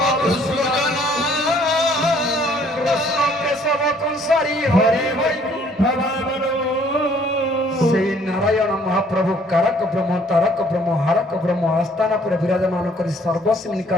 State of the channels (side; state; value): both; normal; correlation 0.61